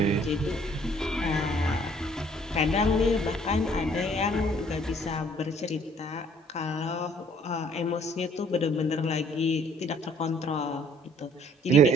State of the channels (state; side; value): normal; both; correlation 0.59